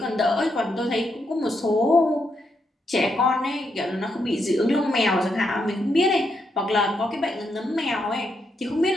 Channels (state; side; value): normal; both; correlation 0.80